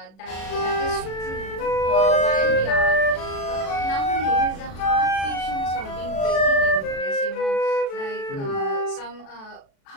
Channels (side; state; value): right; late; 36 ms